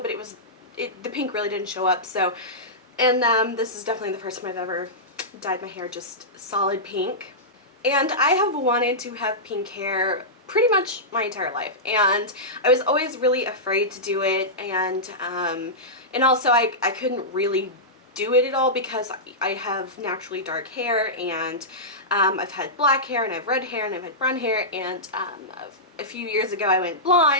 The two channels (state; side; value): normal; both; correlation -0.13